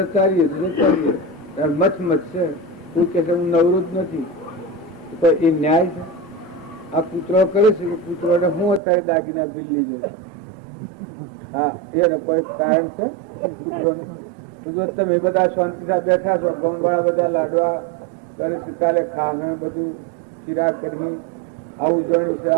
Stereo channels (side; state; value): left; drops out; at 8.8 s